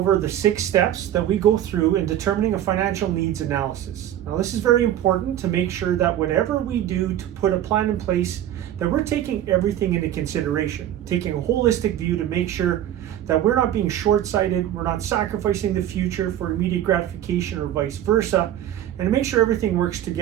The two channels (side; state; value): left; quieter; 11.6 dB